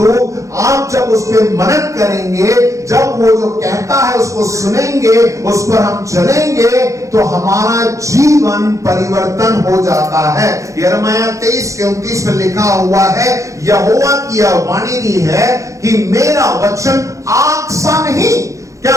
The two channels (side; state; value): left; late; 0.15 ms